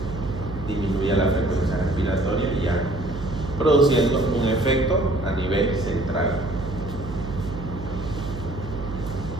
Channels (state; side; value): noise; right; hum, 9 dB below the sound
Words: disminuya la frecuencia respiratoria y ya produciendo un efecto a nivel central.